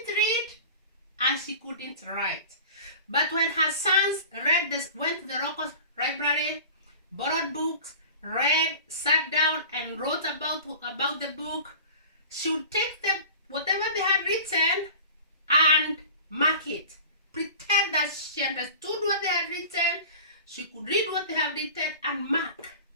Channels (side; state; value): both; inverted; correlation -0.38